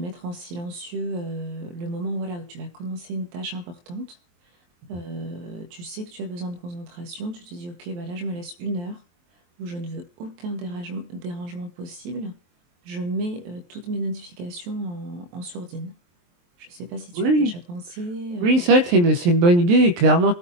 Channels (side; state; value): left; late; 23 ms